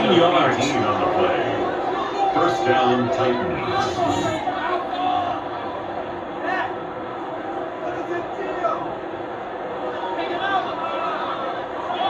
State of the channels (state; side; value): identical; both; correlation 1.00